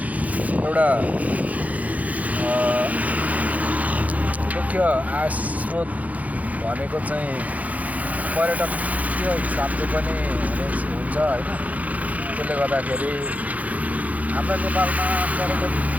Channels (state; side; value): late; left; 0.073 ms